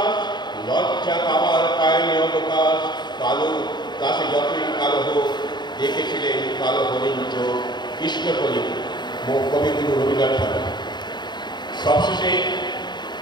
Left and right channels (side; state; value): right; late; 0.21 ms